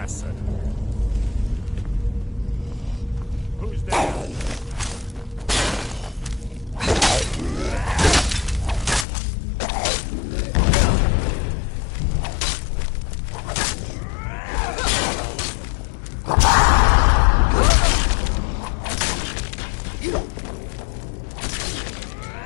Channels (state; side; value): drops out; right; at 9.1 s